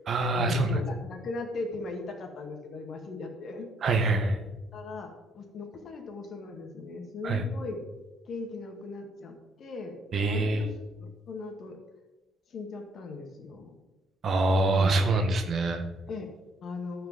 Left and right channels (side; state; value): both; normal; correlation 0.68